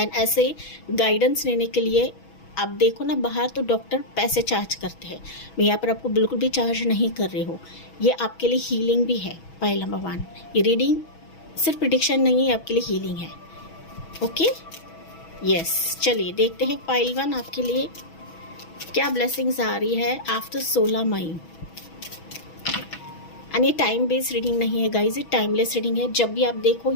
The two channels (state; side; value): late; right; 6.2 ms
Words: ऐसे गाइडेंस लेने के लिए आप देखो ना, बाहर तो डॉक्टर पैसे चार्ज करते हैं, मैं यहाँ पर आपको बिल्कुल भी चार्ज नहीं कर रही हूँ। ये आपके लिए हीलिंग भी है। पाइल नंबर 1, ये रीडिंग सिर्फ प्रेडिक्शन नहीं है, आपके लिए हीलिंग है। ओके, यस, चलिए देखते हैं पाइल 1 आपके लिए क्या ब्लेसिंग्स आ रही है आफ्टर 16 मई। एंड ये टाइम बेस्ड रीडिंग नहीं है गाइज, ये टाइमलेस रीडिंग है। जब भी आप देखो